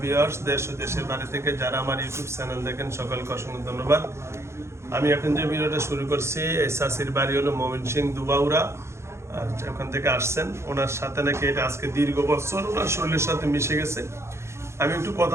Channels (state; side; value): late; left; 0.13 ms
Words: ভিউয়ার্স, দেশ ও দেশের বাইরে থেকে যারা আমার ইউটিউব চ্যানেল দেখেন সকলকে অসংখ্য ধন্যবাদ। আমি এখন যে ভিডিওটা শুরু করছি, এই চাচির বাড়ি হলো ময়মনসিংহ দুবাউরা। আর ওখান থেকে আসছেন, ওনার সাথে নাকি এটা আজকে দীর্ঘ বছর ওনার শরীরের সাথে মিশে গেছে। আমি একটু